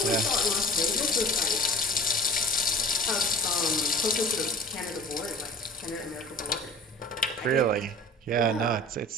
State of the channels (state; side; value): normal; both; correlation 0.42